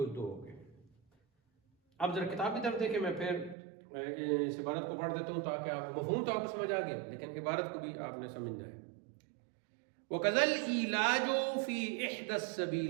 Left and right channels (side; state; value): left; drops out; at 3.6 s